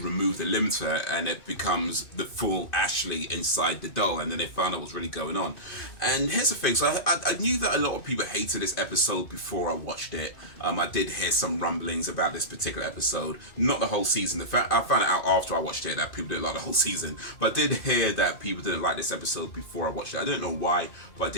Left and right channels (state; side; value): late; right; 2.5 ms